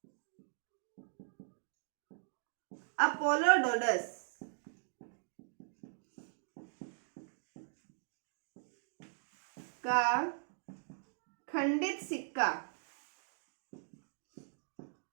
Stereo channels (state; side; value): silent; left; digital silence